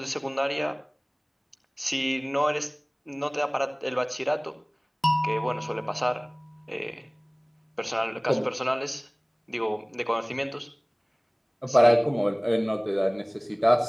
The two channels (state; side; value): identical; both; correlation 1.00